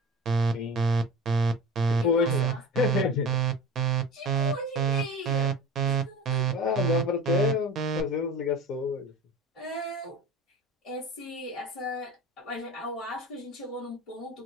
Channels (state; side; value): normal; both; correlation 0.34